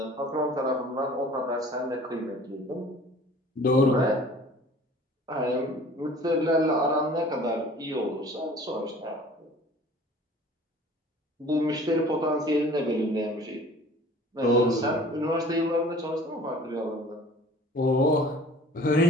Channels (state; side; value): normal; both; correlation 0.48